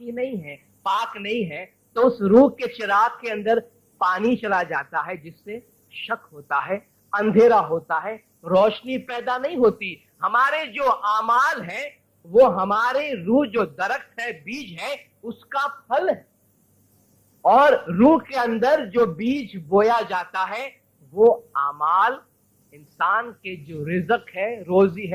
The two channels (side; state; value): both; identical; correlation 1.00